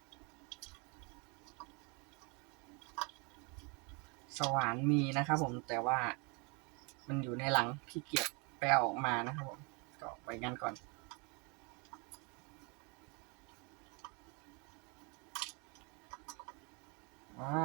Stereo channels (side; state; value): left; quieter; 32.1 dB